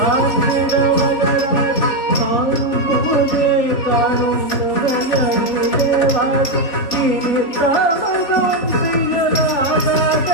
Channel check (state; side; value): late; right; 4.1 ms